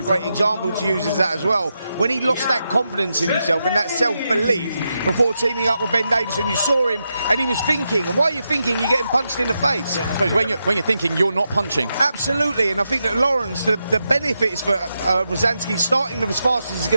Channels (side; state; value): both; inverted; correlation -0.86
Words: great example to use as that as well. When he lost that confidence in himself and that self-belief before teaming up with Ben Davison, you saw him and he was thinking, and while you're thinking, you're getting punched in the face. Yeah, I suppose when you're thinking, you're not punching. Absolutely, and I think that Lawrence, the benefits for Rozanski starting them as fast as he's